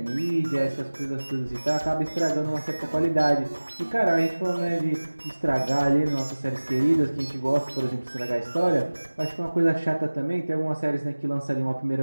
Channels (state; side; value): inverted; both; correlation -1.00